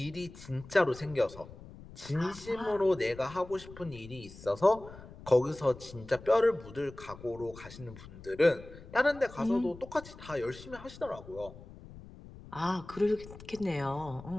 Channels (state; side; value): noise; left; rumble, 17 dB below the sound